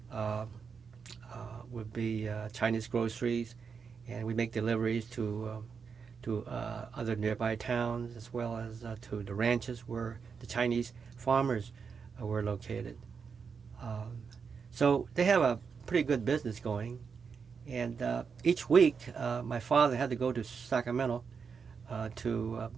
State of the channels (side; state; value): left; quieter; 5.9 dB